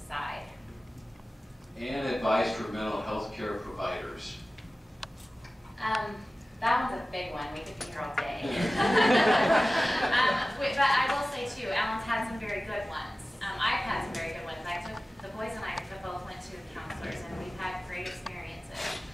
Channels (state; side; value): normal; both; correlation 0.96